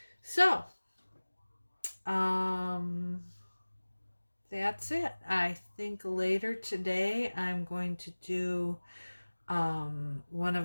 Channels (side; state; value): both; inverted; correlation -1.00